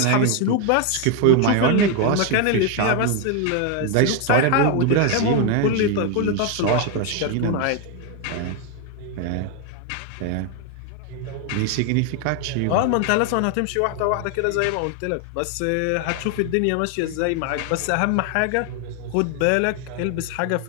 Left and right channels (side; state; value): both; different; correlation 0.01